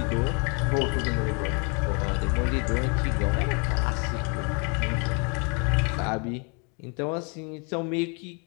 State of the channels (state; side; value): quieter; right; 34.8 dB